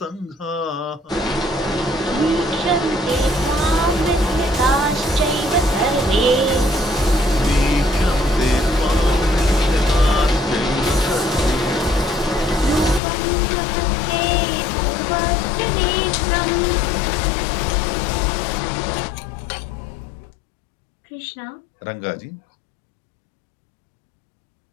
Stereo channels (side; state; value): right; drops out; at 13.0 s